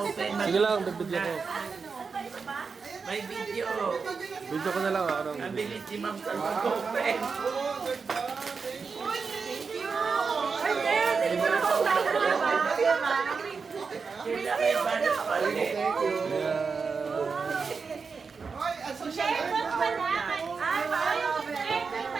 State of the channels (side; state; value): left; quieter; 5.1 dB